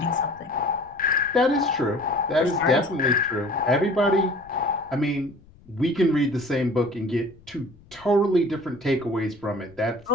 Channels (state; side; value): noise; left; rumble, 26 dB below the sound